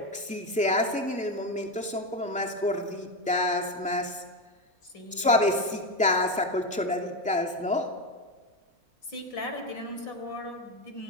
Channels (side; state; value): both; normal; correlation 0.14